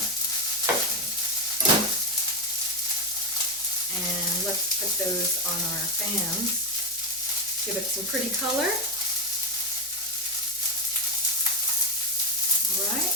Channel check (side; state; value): both; normal; correlation 0.09